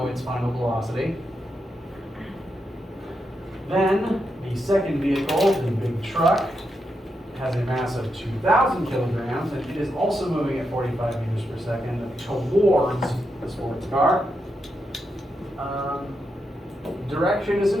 its final velocity. Then the second vehicle, the big truck, has a mass of 2,000 kilograms, and it is also moving at 45 meters per second towards the sports car. Direction is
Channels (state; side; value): normal; both; correlation 0.84